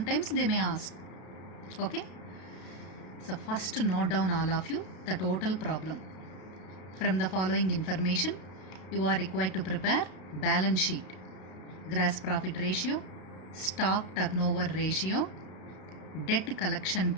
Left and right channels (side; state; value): right; late; 32 ms